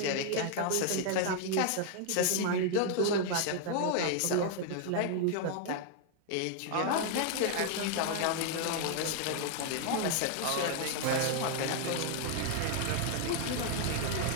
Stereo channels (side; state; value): both; different; correlation 0.00